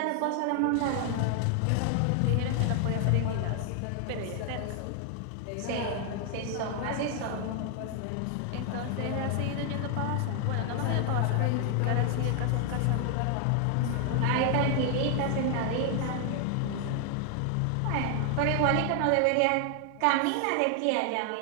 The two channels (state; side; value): different; both; correlation 0.00